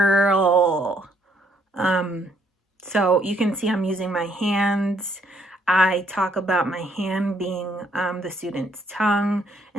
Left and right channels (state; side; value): normal; both; correlation 0.69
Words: So you can see I'm using my hands. I talk about my hand being the student's tongue